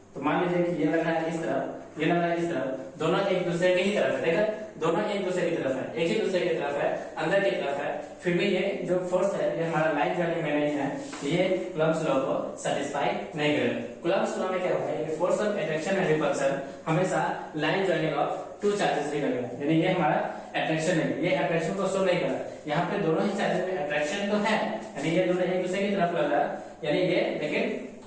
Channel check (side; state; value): both; identical; correlation 1.00